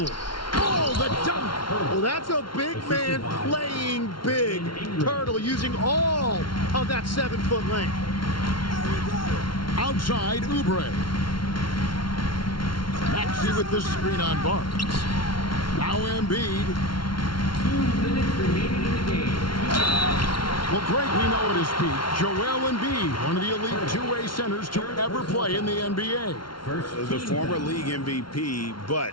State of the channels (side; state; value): right; late; 0.73 ms